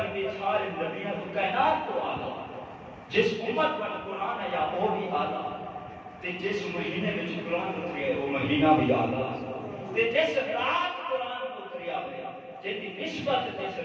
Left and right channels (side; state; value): both; identical; correlation 1.00